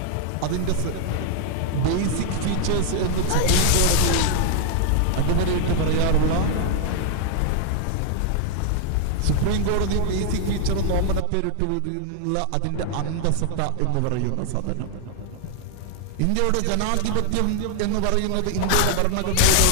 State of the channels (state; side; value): different; both; correlation 0.00